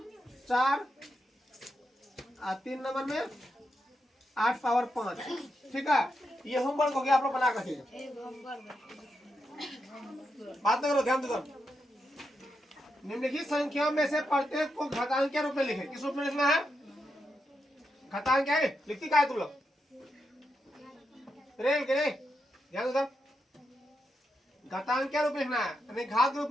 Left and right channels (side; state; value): both; normal; correlation 0.85